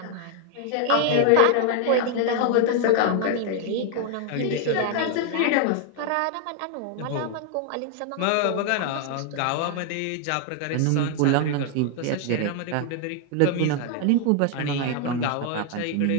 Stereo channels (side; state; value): both; different; correlation 0.00